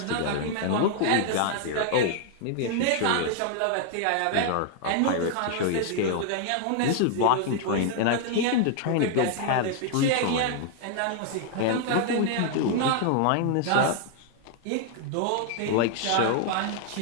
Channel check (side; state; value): both; different; correlation 0.00